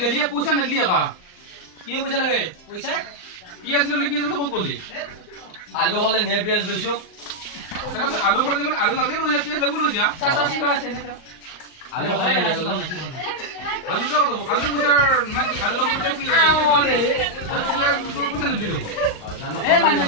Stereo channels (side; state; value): right; late; 38 ms